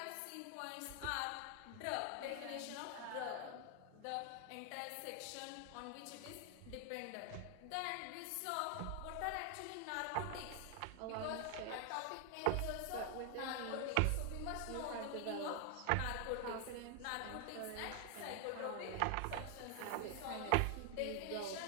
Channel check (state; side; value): different; both; correlation 0.00